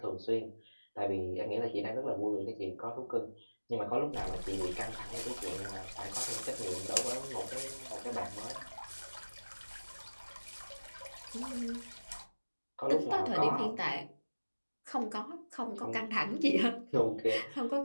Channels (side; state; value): both; inverted; correlation -1.00